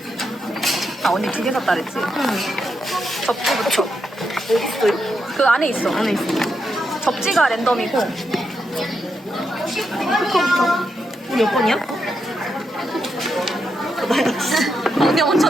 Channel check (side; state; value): both; normal; correlation 0.83